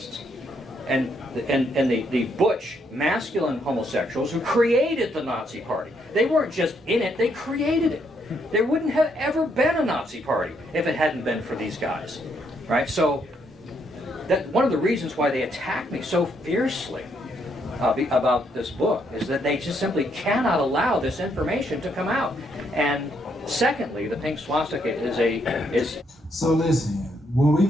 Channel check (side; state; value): both; normal; correlation 0.74